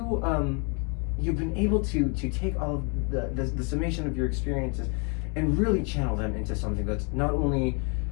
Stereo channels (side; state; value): right; quieter; 36.0 dB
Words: able to take all of the summation of your experiences and really channel them into something that's not only